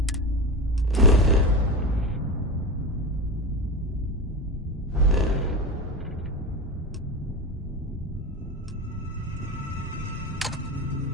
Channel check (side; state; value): both; normal; correlation 0.23